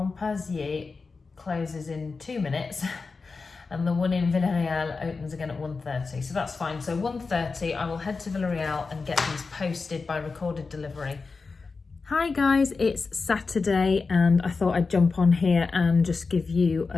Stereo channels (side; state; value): right; quieter; 4.4 dB